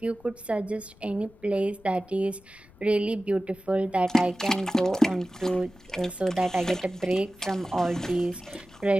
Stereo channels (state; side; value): noise; left; rumble, 26 dB below the sound